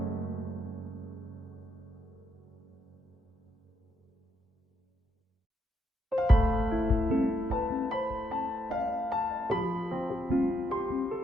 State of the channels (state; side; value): normal; both; correlation 0.77